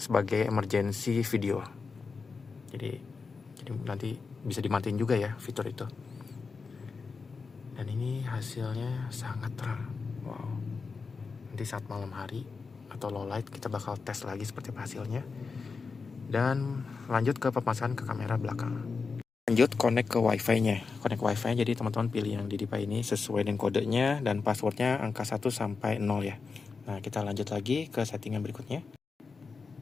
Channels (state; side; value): quieter; right; 4.8 dB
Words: emergency video. Jadi nanti bisa dimatiin juga ya fitur itu. Dan ini hasilnya sangat terang. Wow. Nanti saat malam hari atau low light kita bakal tes lagi seperti apa hasilnya. Dan lanjut ke pemasangan ke kamera belakang. Lanjut connect ke wifi-nya. Connect wifi, jadi teman-teman pilih yang di DJI ini sesuai dengan kodenya dan passwordnya angka 1 sampai 0 ya. Nah kita lanjut lagi ke settingan berikutnya.